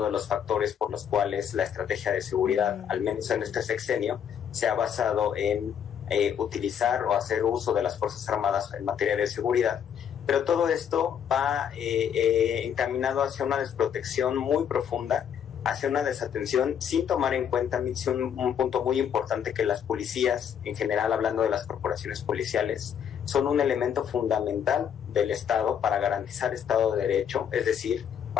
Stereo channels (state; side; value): quieter; right; 8.5 dB